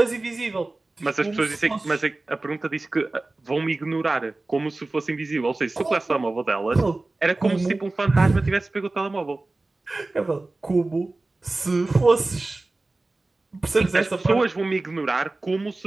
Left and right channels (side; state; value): left; quieter; 3.1 dB